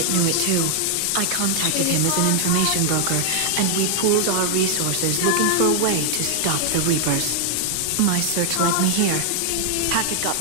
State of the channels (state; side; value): different; both; correlation 0.00